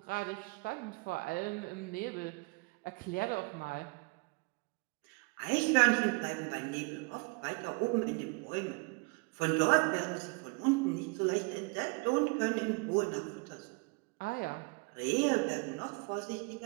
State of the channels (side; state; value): left; quieter; 30.6 dB